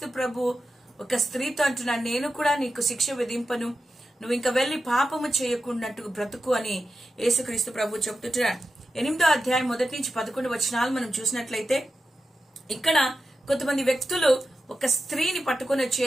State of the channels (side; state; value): both; normal; correlation 0.91